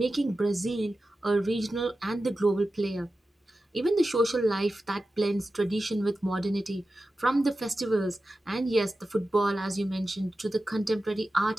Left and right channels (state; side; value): normal; both; correlation 0.93